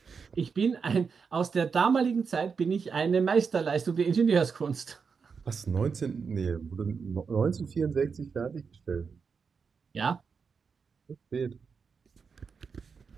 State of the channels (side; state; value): left; quieter; 5.6 dB